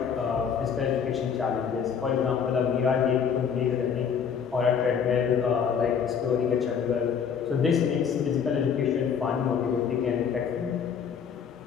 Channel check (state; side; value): quieter; right; 7.1 dB